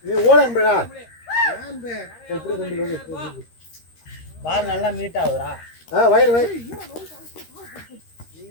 ஓட அன்புடா எப்படி தம்பி பால் நல்லா மீட் ஆகுதுடா வைடு வை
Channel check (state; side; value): late; right; 13 ms